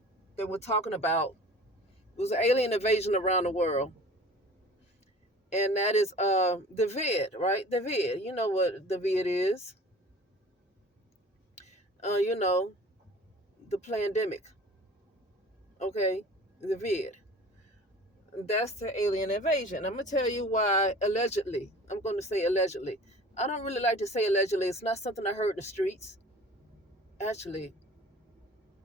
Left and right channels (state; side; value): normal; both; correlation 0.44